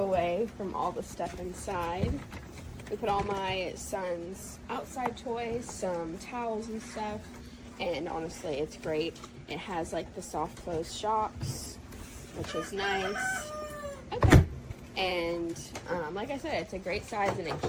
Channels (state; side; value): identical; both; correlation 1.00